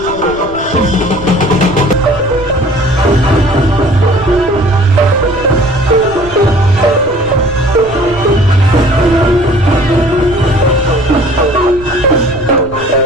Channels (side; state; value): right; noise; rumble, 16 dB below the sound